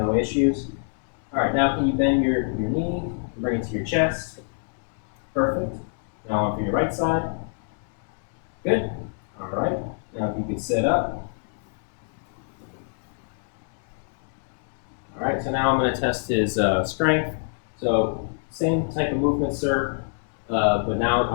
issues. All right, now can you bend your knee and bring it to your chest? Perfect. Now on for your right side. Good. All right. Now if you could sit up. All right, so now I'm going to test his strength. So same type of movement, sir, but now I'm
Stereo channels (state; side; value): silent; right; digital silence